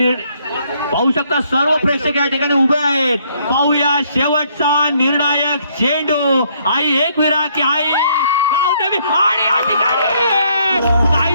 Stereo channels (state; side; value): inverted; both; correlation -0.68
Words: पाहू शकता. सर्व प्रेक्षक या ठिकाणी उभे आहेत. पाहूया शेवटचा निर्णायक चेंडू. आई एकविरा की आई गावदेवी आणि या ठिकाणी